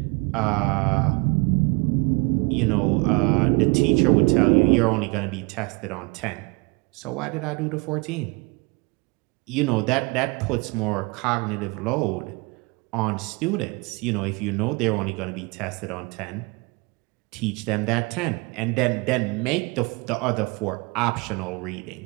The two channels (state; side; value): quieter; left; 28.6 dB